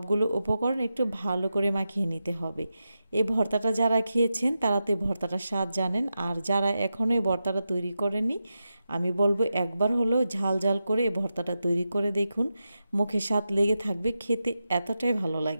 উপকরণ একটু ভালো করে মাখিয়ে নিতে হবে। এই ভর্তাটা যারা খেয়েছেন তারা তো এই ভর্তাটার স্বাদ জানেন, আর যারা এখনও এই ভর্তাটা তৈরি করেনি আমি বলবো একবার হলেও ঝাল ঝাল করে এই ভর্তাটা তৈরি করে দেখুন, মুখে স্বাদ লেগে থাকবে, খেতে এতটাই ভালো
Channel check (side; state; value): both; inverted; correlation -0.89